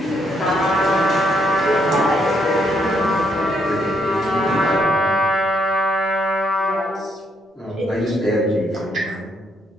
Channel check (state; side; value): normal; both; correlation 0.74